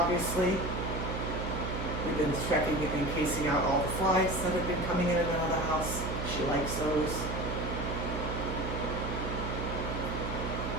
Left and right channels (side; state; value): right; noise; hum, 4 dB below the sound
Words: We've been checking and casing out all the flies that have been coming in and out of the house. She likes those.